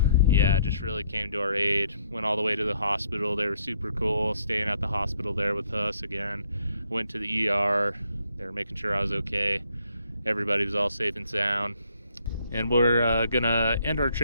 yeah, just really came to our aid. Went all the way to the hospital. They were super cool, staying at the hospital there with us again. Went to the ER. They were making sure I was okay. Everybody was all safe and sound. And we're gonna end our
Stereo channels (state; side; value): inverted; both; correlation -0.69